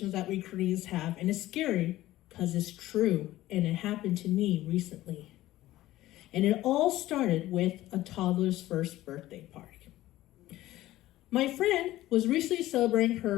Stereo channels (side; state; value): right; quieter; 15.7 dB